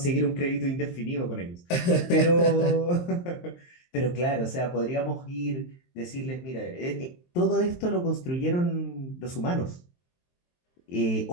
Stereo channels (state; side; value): late; right; 23 ms